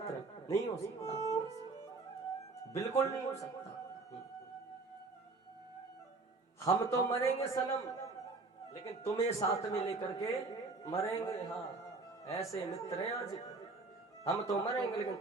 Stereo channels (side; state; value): left; quieter; 3.7 dB